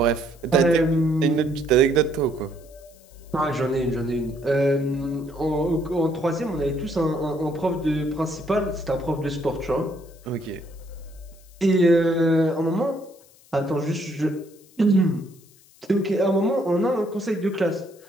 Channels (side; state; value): left; noise; hiss, 27 dB below the sound